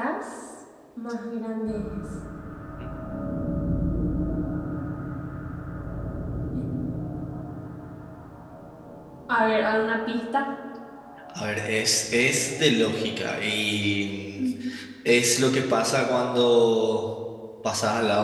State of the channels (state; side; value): identical; both; correlation 1.00